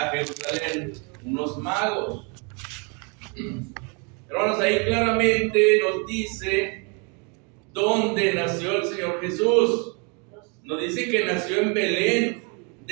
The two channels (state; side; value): quieter; left; 34.3 dB